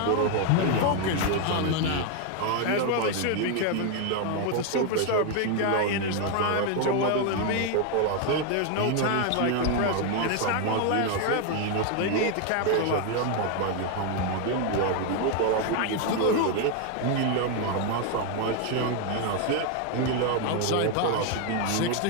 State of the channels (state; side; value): different; both; correlation 0.01